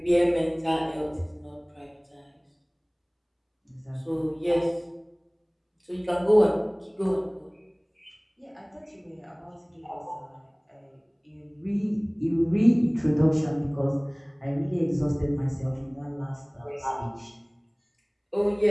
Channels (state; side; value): identical; both; correlation 1.00